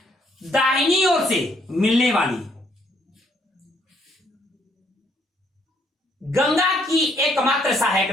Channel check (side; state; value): both; normal; correlation 0.69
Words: दाहिनी ओर से मिलने वाली गंगा की एकमात्र सहायक